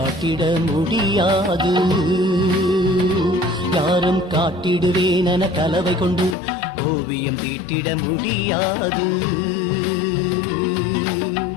முடியாது யாரும் காட்டிடுவேன் என கலவை கொண்டு ஓவியம் தீட்டிட முடியாது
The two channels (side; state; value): right; drops out; at 6.4 s